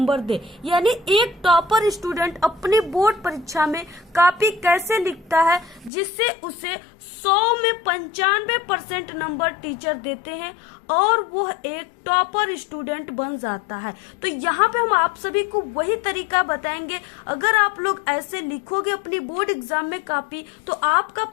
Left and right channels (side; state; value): right; drops out; at 5.9 s